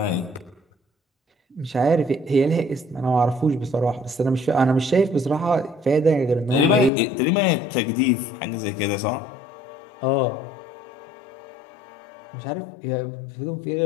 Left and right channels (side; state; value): right; drops out; at 6.9 s